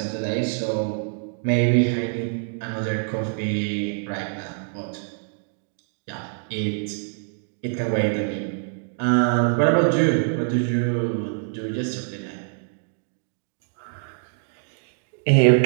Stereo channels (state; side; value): silent; left; digital silence